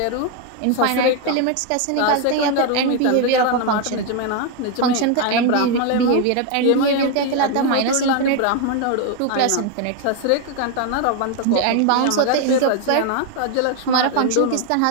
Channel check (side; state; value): both; different; correlation 0.01